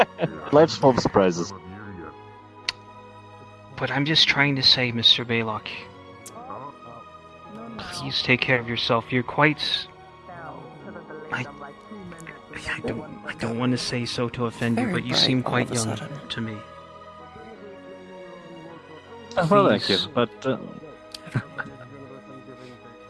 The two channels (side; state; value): both; identical; correlation 1.00